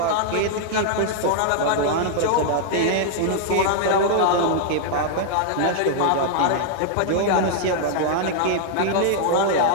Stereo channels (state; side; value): different; both; correlation -0.01